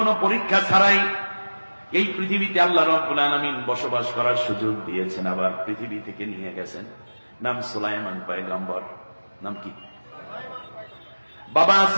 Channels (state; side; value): inverted; both; correlation -1.00